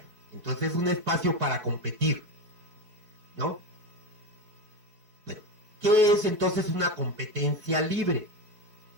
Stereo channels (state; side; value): late; left; 4.6 ms